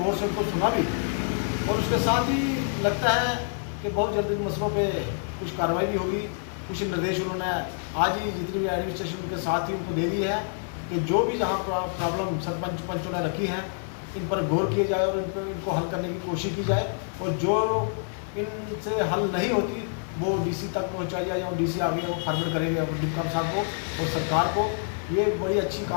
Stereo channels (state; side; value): silent; right; 60 dB below the other